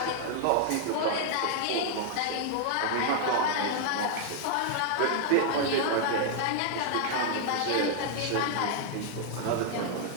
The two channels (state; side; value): different; both; correlation 0.00